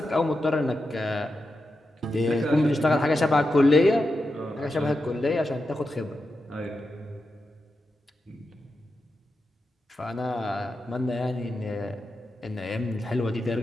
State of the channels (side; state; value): both; normal; correlation 0.89